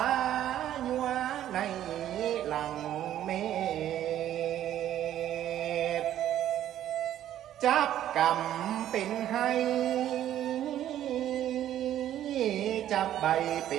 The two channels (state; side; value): quieter; left; 11.8 dB